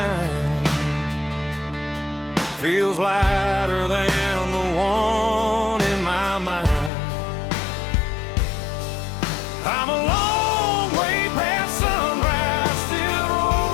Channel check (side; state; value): right; drops out; at 6.9 s